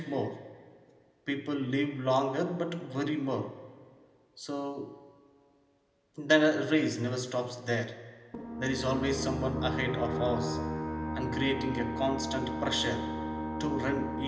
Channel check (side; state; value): both; identical; correlation 1.00